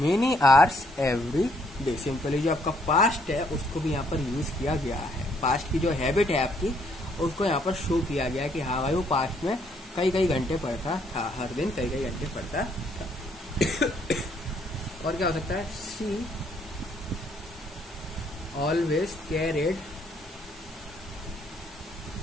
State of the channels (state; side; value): normal; both; correlation 0.68